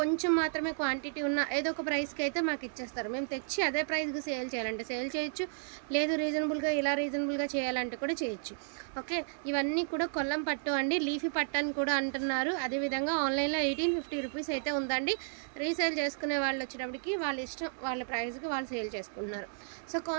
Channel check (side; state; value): left; silent; digital silence